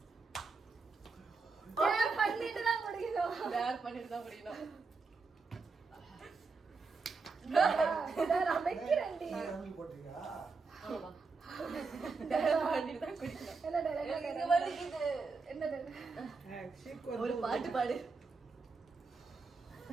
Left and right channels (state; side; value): quieter; left; 4.4 dB